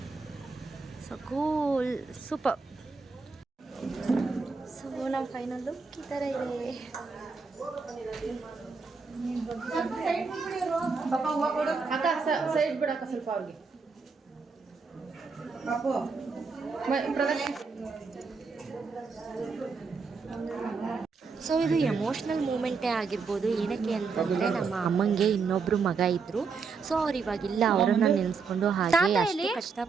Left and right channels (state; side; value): quieter; left; 4.8 dB